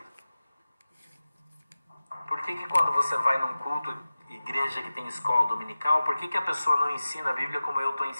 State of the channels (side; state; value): both; inverted; correlation -0.96